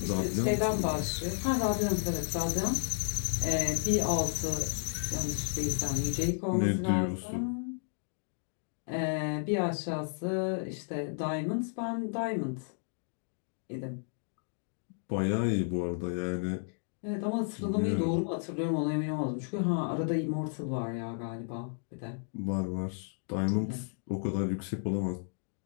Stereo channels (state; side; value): silent; right; digital silence